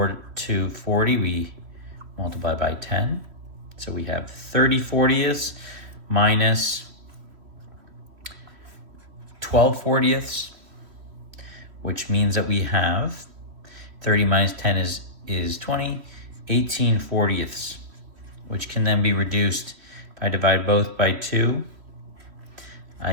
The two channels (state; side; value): late; left; 3.1 ms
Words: to 40? We multiply by 10. So we have 30/40 minus 12/40, which means that we have 30 minus 10 is 20, 18/40, which can then be reduced. If I divide both by 2,